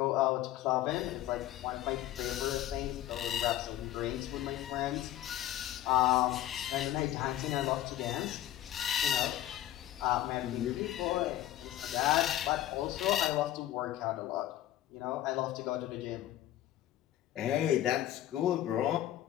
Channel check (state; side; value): quieter; right; 13.3 dB